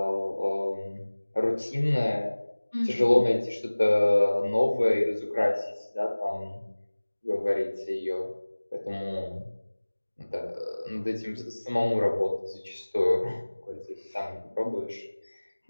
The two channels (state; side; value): inverted; both; correlation -1.00